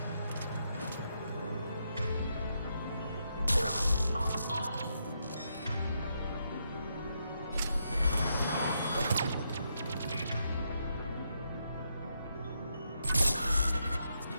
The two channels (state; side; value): inverted; both; correlation -0.80